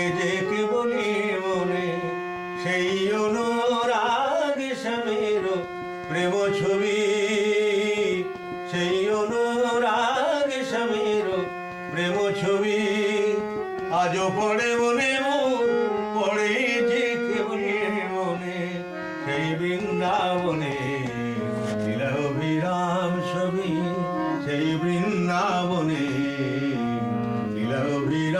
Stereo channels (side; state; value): both; identical; correlation 1.00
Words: যে কেবলি মনে সেই অনুরাগ স্বামীর প্রেম ছবি, সেই অনুরাগ স্বামীর প্রেম ছবি। আজও পড়ে মনে পড়ে যে কেবলি মনে সেই বৃন্দাবনে লীলা অভিরাম ছবি, সেই বৃন্দাবনে লীলা